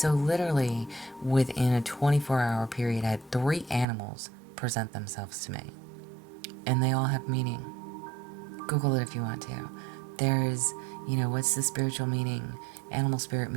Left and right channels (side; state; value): left; drops out; at 3.9 s